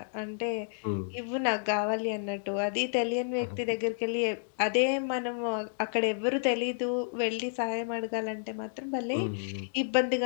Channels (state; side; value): silent; right; digital silence